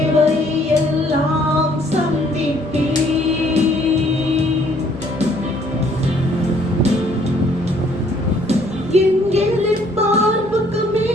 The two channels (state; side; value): normal; both; correlation 0.62